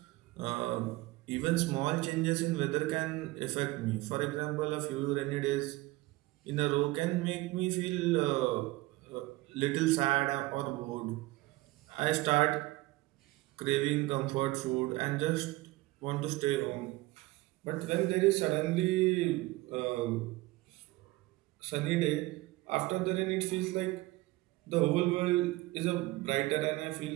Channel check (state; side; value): quieter; left; 20.2 dB